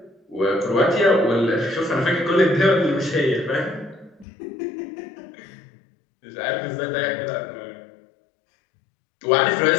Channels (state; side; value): drops out; right; at 4.2 s